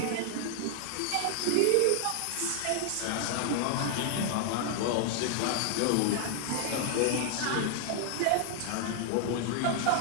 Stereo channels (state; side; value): different; both; correlation 0.00